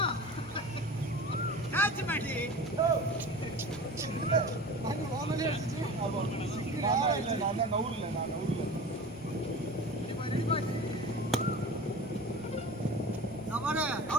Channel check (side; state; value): both; normal; correlation 0.36